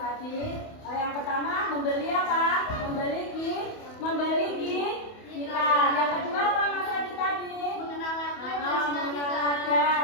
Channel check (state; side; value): late; right; 28 ms